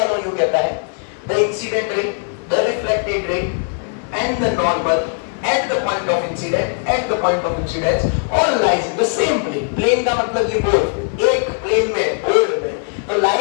लॉ यू कहता है, the incident ray, the reflected ray and the normal at the point of incidence all lies in the same plane. plane का मतलब ये बोर्ड, एक प्लेन में, बोर्ड में. तो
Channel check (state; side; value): silent; right; 61 dB below the other